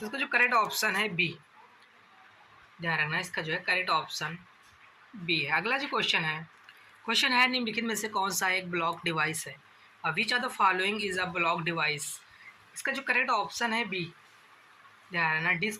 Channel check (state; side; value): identical; both; correlation 1.00